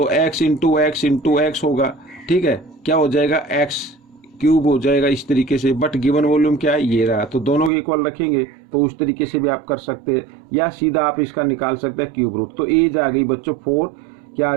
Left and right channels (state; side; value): drops out; left; at 7.7 s